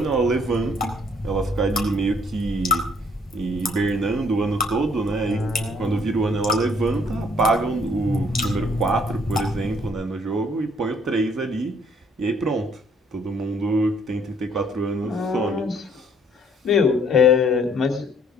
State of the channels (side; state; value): both; normal; correlation 0.64